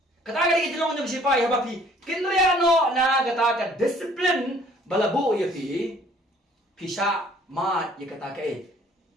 Kataga di kitilong yung sipay, habapi, kinriano na kataga discipline, balabu ya pi, pisa mat ya kataga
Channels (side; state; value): both; normal; correlation 0.57